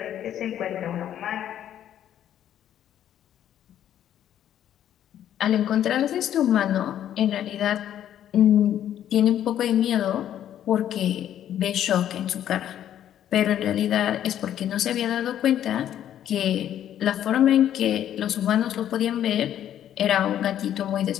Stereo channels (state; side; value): quieter; right; 10.8 dB